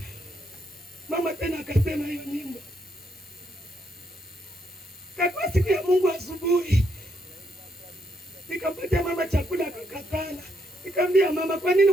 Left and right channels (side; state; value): both; normal; correlation 0.76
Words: Mama tena akasema hiyo nyimbo. Kwa siku ya Mungu asubuhi. Nikampatia mama chakula akakatala. Nikamwambia mama kwa nini